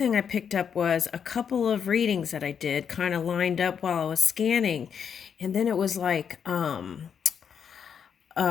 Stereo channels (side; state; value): right; quieter; 7.4 dB